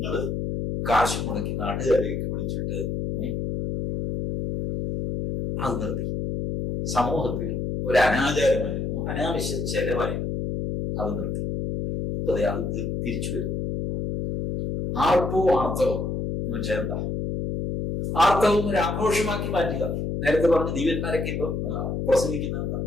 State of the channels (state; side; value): noise; left; hum, 2 dB below the sound